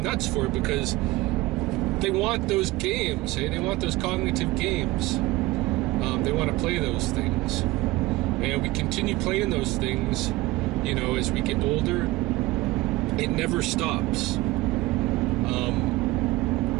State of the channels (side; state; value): left; quieter; 19.7 dB